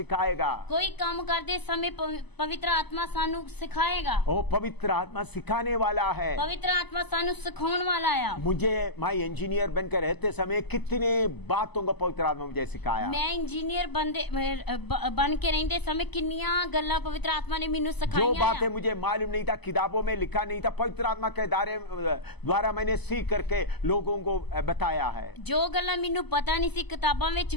कोई काम करते समय पवित्र आत्मा ਸਾਨੂੰ सिखाएगा। वो पवित्र आत्मा सिखाने वाला है। पवित्र आत्मा ਸਾਨੂੰ ਸਿਖਾਉਣ वाला ਆ। मुझे मैं इंजीनियर बनकर रहते समय कितने बातों को पवित्र आत्मा मुझे सिखाया। मैं इंजीनियर बन के रहते समय किन्नियां गल्लां पवित्र आत्मा ने मैनू जो सिखाईयां। बातें मुझे मालूम नहीं था, किताबों में लिखा नहीं था, पवित्र आत्मा के द्वारा मैंने सीख करके लोगों को बताया है। जो गल्लां मैनू पता नहीं सी, किताबां विच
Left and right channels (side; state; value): right; late; 0.99 ms